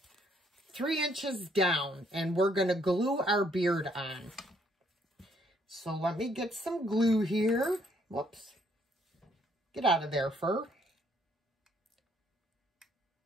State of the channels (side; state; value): both; normal; correlation 0.68